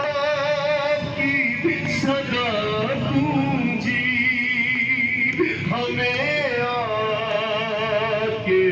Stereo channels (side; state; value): both; identical; correlation 1.00